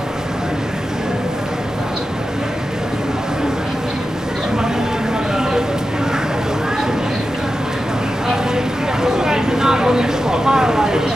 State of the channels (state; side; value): normal; both; correlation 0.91